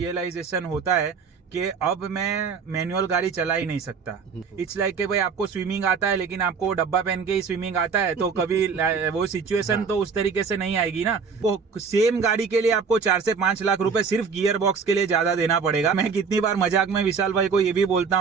होता है कि अब मैं मैनुअल गाड़ी चला ही नहीं सकता। इट्स लाइक कि भाई आपको स्विमिंग आता है लेकिन आपको डब्बा पहन के ही स्विमिंग आता है, तो कभी वो सिचुएशन तो उस तरीके से नहीं आएगी ना। वो सेम गाड़ी के लिए आपको 4 से 5 लाख रुपए सिर्फ गियर बॉक्स के लिए ज्यादा देना पड़ेगा। मैं कितनी बार मजाक में विशाल भाई को ये भी बोलता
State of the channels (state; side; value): quieter; left; 5.6 dB